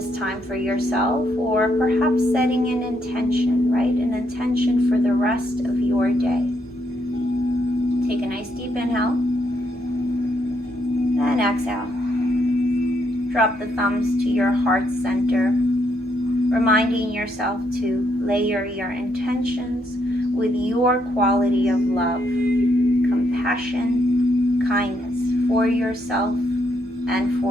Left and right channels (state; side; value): normal; both; correlation 0.75